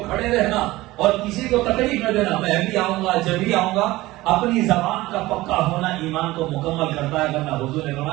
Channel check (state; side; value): quieter; left; 18.4 dB